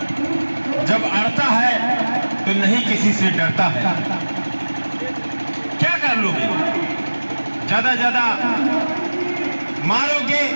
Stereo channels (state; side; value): inverted; both; correlation -1.00